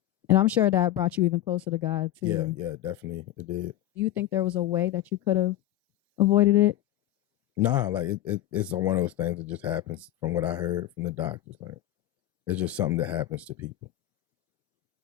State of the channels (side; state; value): right; quieter; 13.7 dB